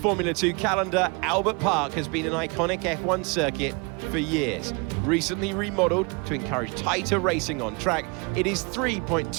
2 calendar. Albert Park has been an iconic F1 circuit for years. Recently remodeled to encourage tighter racing on track, it is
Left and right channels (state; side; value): quieter; left; 30.5 dB